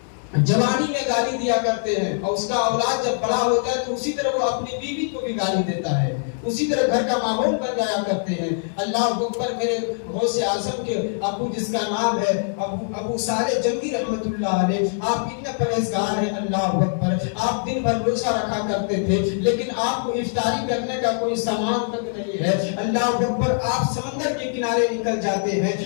جوانی میں گالی دیا کرتے ہیں اور اس کا اولاد جب بڑا ہوتا ہے تو اسی طرح وہ اپنی بیوی کو بھی گالی دیتا ہے, اسی طرح گھر کا ماحول بن جایا کرتے ہیں. اللہ اکبر. میرے غوث اعظم کے ابو جس کا نام ہے ابو صالح جنگی رحمت اللہ علیہ, آپ اتنے پرہیزگار ہیں. اللہ اکبر. آپ دن بھر روزہ رکھا کرتے تھے, لیکن آپ کو افطاری کرنے کا کوئی سامان تک نہیں ہے. اللہ اکبر. آپ سمندر کے کنارے نکل جاتے ہیں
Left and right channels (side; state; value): right; silent; digital silence